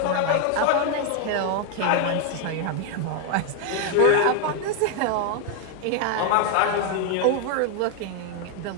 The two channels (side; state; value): both; different; correlation 0.01